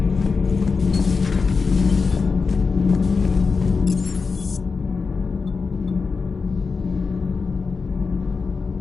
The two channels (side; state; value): right; quieter; 4.8 dB